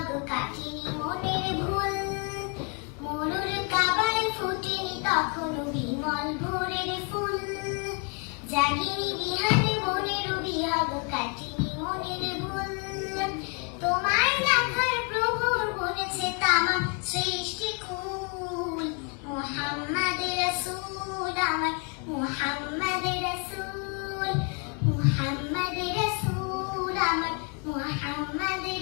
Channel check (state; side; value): quieter; right; 37.3 dB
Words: কাটিনি মনের ভুল। মোর কাবায় ফোটেনি তখনো বিমল ভোরের ফুল, জাগিনি বিহার মনের বিহাগ কাটিনি মনের ভুল। তোমায় দেখার প্রভুর বলেছে তামাম সৃষ্টি কুল, মুহাম্মদ রাসূল আমার মুহাম্মদ রাসূল, মুহাম্মদ রাসূল আমার মুহাম্মদ